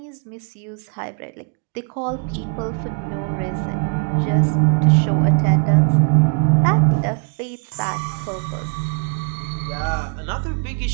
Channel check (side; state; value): left; quieter; 37.7 dB